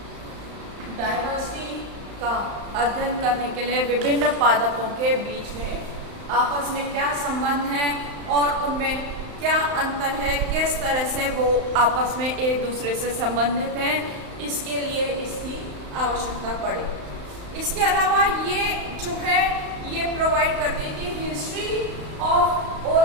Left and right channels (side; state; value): left; late; 35 ms